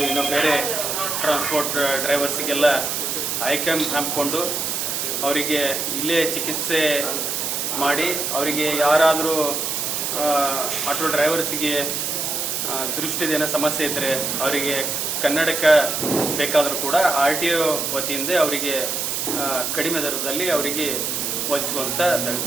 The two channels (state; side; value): noise; right; hiss, 1 dB below the sound